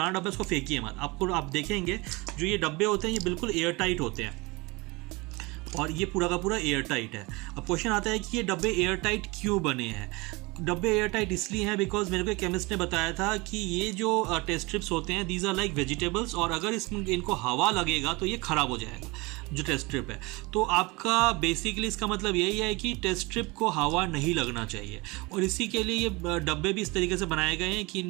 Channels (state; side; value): quieter; left; 24.8 dB